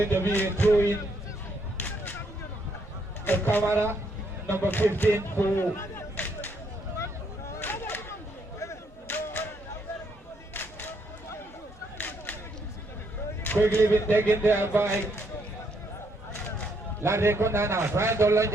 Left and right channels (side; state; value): both; normal; correlation 0.73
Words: to be a throw in the camera, number 15 for quickly been taken there by LATRIKUNDA now, trying to launch